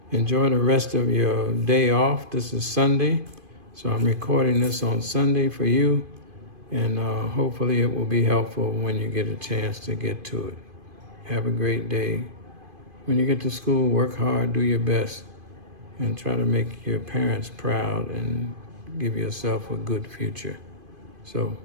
enjoy the rest of your day off. This is Sunday, so I'm recording this on Sunday for you, and hopefully it will be helpful when you get a chance to get to it. Have a great day. When you get to school, work hard, do your best, and try to make your parents proud and give yourself a good future. So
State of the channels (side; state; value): left; late; 2.5 ms